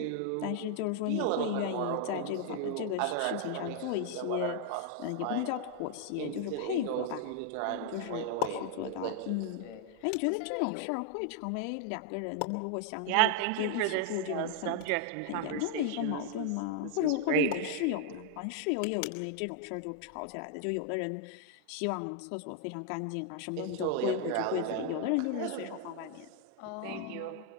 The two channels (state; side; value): different; both; correlation 0.00